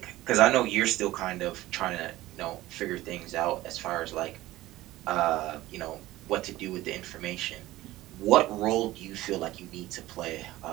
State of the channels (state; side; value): quieter; left; 16.7 dB